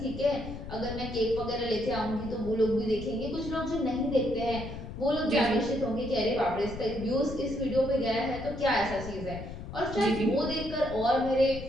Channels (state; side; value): noise; left; rumble, 10 dB below the sound